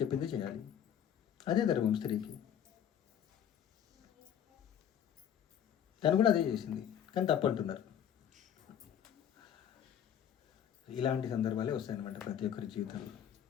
చేయాలి, అదే ధర్మం స్త్రీకి. తను కూడా అదే చేసింది, కానీ తప్పంటున్నారు. ఇలాంటి సందర్భాలే వస్తాయన్నమాట ప్రతి ఒక్కరి జీవితంలో.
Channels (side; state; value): right; quieter; 9.4 dB